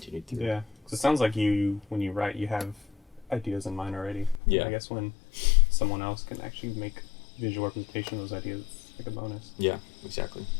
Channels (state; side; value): drops out; right; at 4.4 s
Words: through. Yeah, because it sounds like you when you write, you have ideas in mind already. Yeah. I guess when someone else can actually make visual representation of those ideas, it's like a bonus. Yeah, exactly.